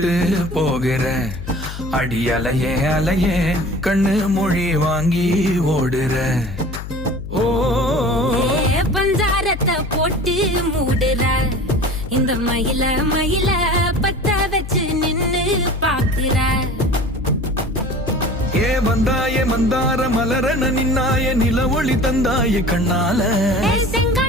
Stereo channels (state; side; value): noise; left; hum, 9 dB below the sound